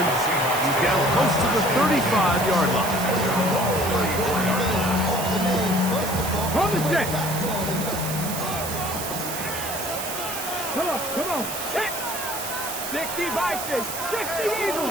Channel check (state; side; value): noise; right; hiss, 6 dB below the sound